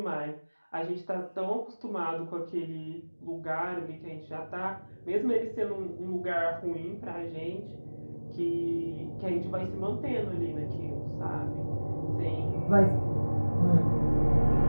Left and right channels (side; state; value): both; inverted; correlation -1.00